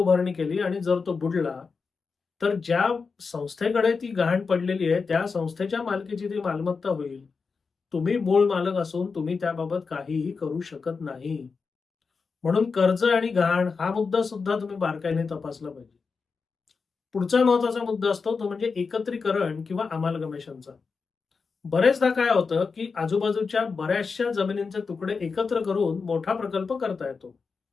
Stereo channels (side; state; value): right; quieter; 4.9 dB